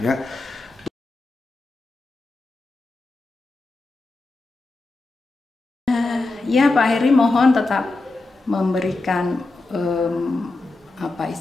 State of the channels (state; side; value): quieter; right; 3.2 dB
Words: Ya, Pak Heri mohon tetap memberikan